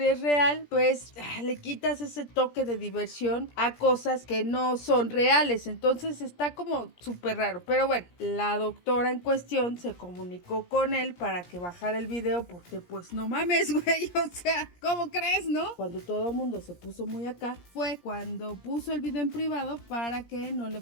es real, pues le quitas ese toque de diversión a cosas que no son reales. Entonces está como súper raro. Pero bueno, la doctora en cuestión se comunicó con él para que bajara el video porque pues no mames, güey, o sea, ¿cómo crees, no? Cuando todo el mundo se puso muy acá fue cuando puso el video en privado para que no le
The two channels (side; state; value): right; late; 17 ms